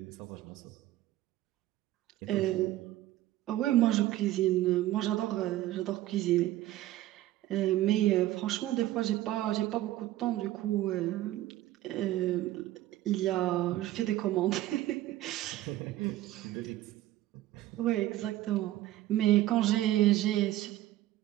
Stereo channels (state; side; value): quieter; left; 15.0 dB